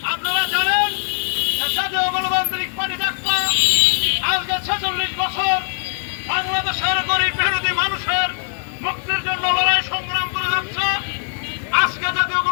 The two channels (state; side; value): silent; right; digital silence